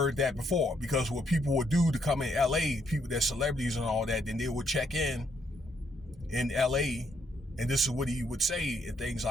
that before. Because what people would do to come in LA, people that celebrities and all that, then they would check in LA, and this is what he would say and things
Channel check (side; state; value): both; normal; correlation 0.73